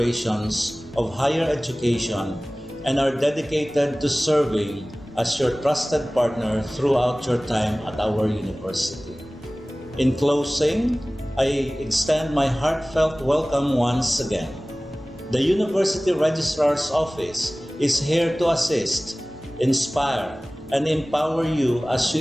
of higher education and are dedicated to serving as your trusted partner throughout your time at our university. In closing, I extend my heartfelt welcome once again. The University Registrar's Office is here to assist, inspire, and empower you as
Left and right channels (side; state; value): both; normal; correlation 0.98